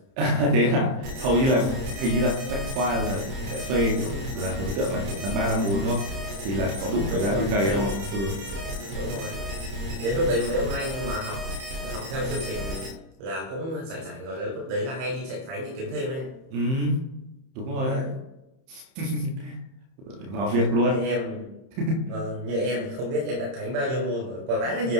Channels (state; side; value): late; left; 30 ms